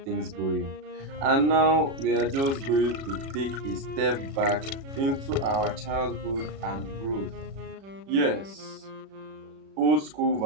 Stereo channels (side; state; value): left; late; 37 ms